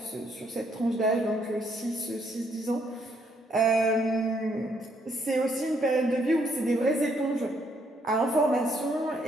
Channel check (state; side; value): normal; both; correlation 0.71